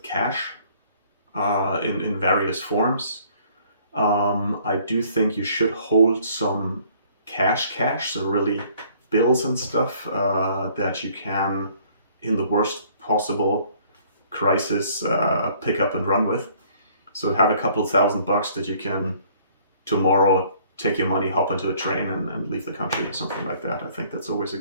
cash in various forms. I do think you should hold some cash, so really bills and stuff that you can, in the worst possible crisis, pick up and run with. So have a couple $1,000 that you can tomorrow take your money, hop into a train, and leave the country or something like that. I think that's always a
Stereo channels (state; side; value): inverted; both; correlation -0.59